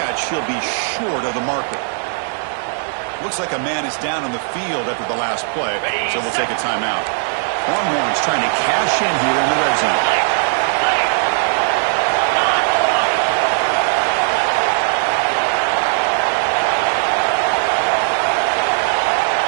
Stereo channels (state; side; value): silent; left; digital silence